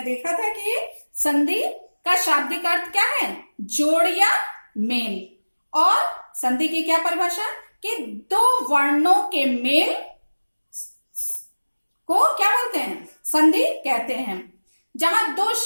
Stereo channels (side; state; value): both; inverted; correlation -1.00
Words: देखा था कि संधि का शाब्दिक अर्थ क्या है, जोड़ या मेल। और संधि की क्या परिभाषा कि दो वर्णों के मेल को क्या बोलते हैं, संधि कहते हैं। जहां दो